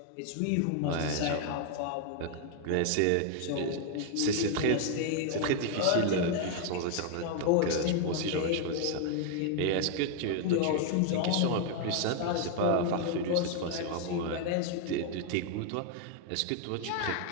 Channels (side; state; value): both; different; correlation 0.00